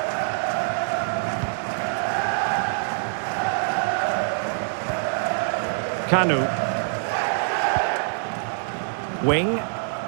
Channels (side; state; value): left; silent; digital silence